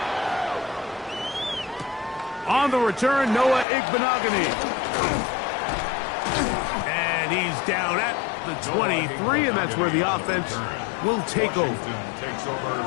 On the return, Noah Igbenogany. And he's down at the 23, and that's where the offense will take over.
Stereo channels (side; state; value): right; drops out; at 3.7 s